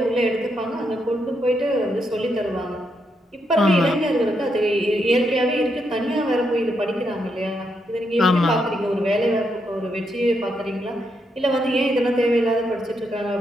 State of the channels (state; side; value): normal; both; correlation 0.80